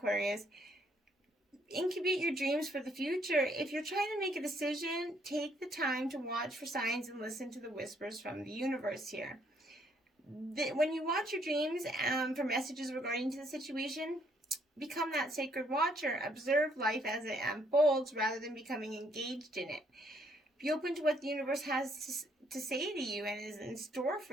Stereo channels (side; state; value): both; normal; correlation 0.68